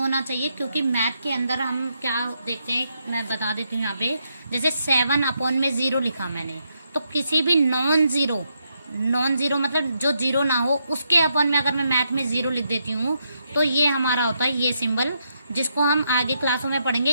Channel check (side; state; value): both; inverted; correlation -0.79